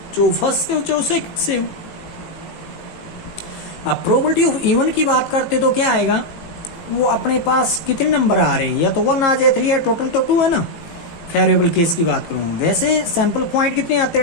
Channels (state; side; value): late; right; 19 ms